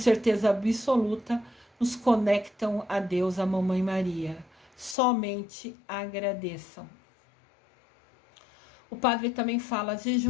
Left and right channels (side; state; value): right; drops out; at 5.0 s